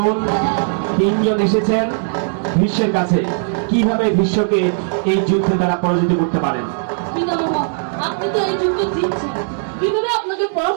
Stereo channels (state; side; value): silent; left; digital silence